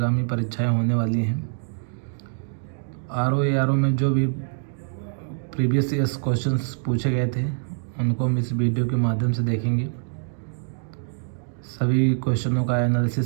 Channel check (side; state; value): left; silent; digital silence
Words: परीक्षाएं होने वाली हैं। आरओ एआरओ में जो भी प्रीवियस ईयर्स क्वेश्चंस पूछे गए थे उनको हम इस वीडियो के माध्यम से देखेंगे। सभी क्वेश्चनों का